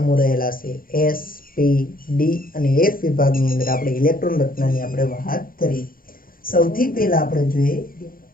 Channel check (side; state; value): right; late; 0.42 ms